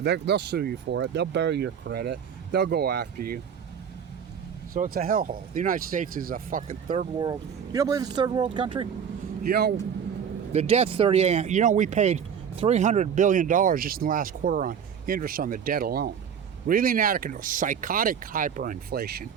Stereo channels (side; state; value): left; quieter; 7.7 dB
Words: They'll sue you for it. They'll bury your credit. They'll go after you. So it's a hellhole. The United States is a fucking third world. You don't believe it's a third world country? The debt's 38. We paid $300 billion just in the last quarter on interest on the debt alone. Really inadequate, psychotic hyperinflation.